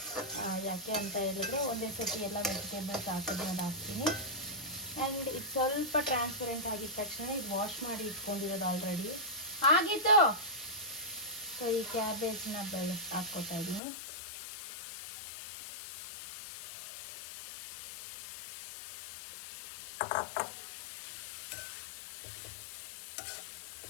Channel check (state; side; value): drops out; right; at 13.8 s